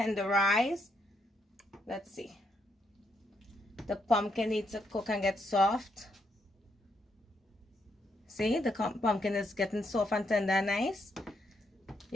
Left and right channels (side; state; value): both; normal; correlation 0.78